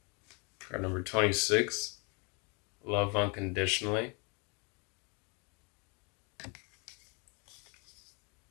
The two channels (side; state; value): right; quieter; 33.3 dB